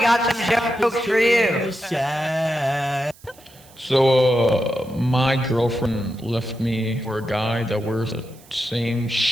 some jokes for you? So, my girlfriend left me for a guy that wears the same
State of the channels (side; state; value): right; noise; hiss, 25 dB below the sound